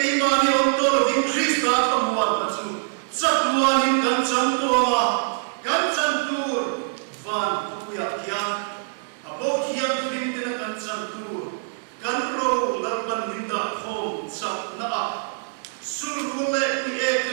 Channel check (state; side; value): silent; left; digital silence